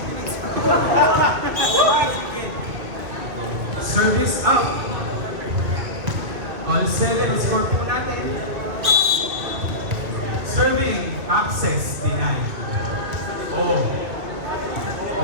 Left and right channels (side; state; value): left; late; 2.5 ms